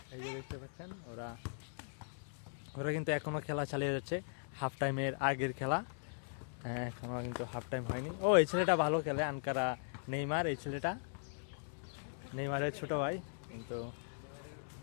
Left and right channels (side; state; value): right; silent; digital silence